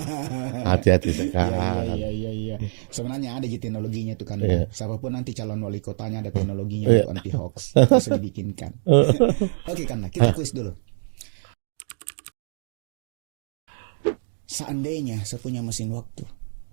Hati-hati sekarang. Iya. Sebenarnya ada teknologinya tuh kan. Siapapun nanti calon wali kotanya ada teknologinya untuk anti hoax. Bisa dibikinkan. Oke Kanda, kita kuis dulu. Seandainya saya punya mesin waktu,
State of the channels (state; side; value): silent; left; digital silence